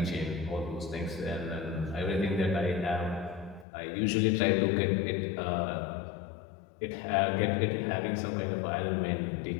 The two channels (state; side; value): drops out; right; at 3.7 s